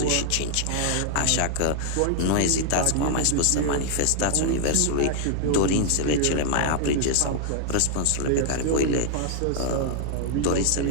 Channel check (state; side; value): different; both; correlation -0.01